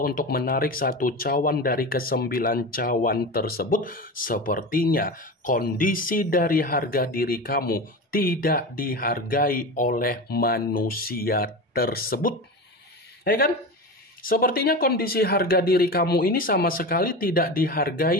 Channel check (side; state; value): both; normal; correlation 0.26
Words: untuk menarik satu cawan dari ke-9 cawan tersebut, sepertinya kondisi dari harga diri kamu tidak dihargai oleh manusia tersebut. Ya kan? Sepertinya kondisi harga diri kamu ini sama sekali tidak